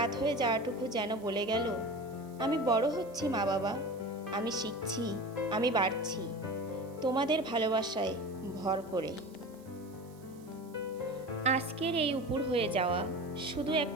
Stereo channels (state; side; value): noise; right; hiss, 27 dB below the sound